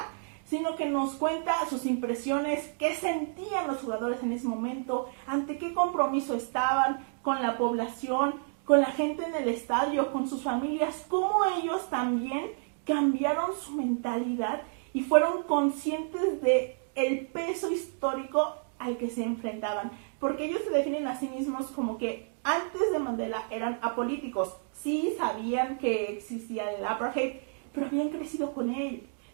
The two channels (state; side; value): silent; left; 58 dB below the other